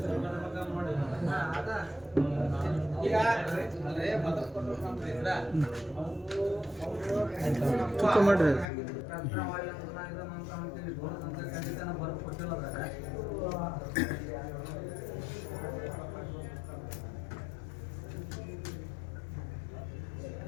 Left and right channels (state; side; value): drops out; right; at 8.7 s